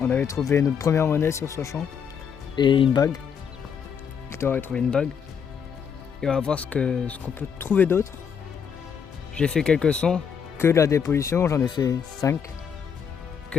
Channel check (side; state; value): right; quieter; 7.1 dB